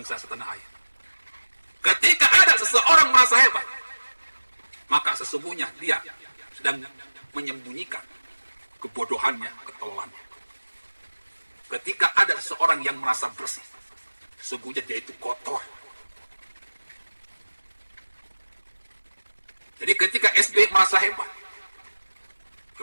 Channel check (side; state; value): both; inverted; correlation -1.00